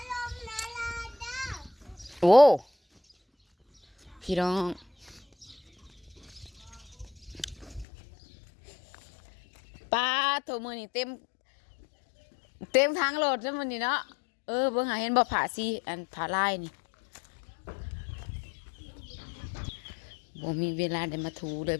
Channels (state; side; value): drops out; right; at 7.9 s